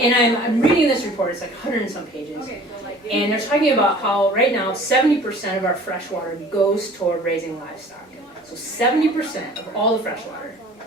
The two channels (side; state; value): both; normal; correlation 0.48